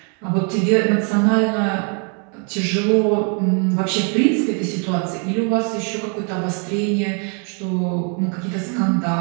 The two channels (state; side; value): quieter; left; 39.2 dB